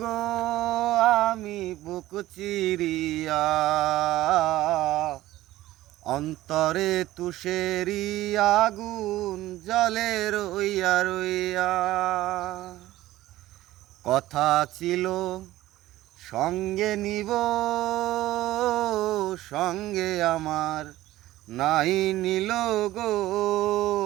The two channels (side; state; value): left; quieter; 15.9 dB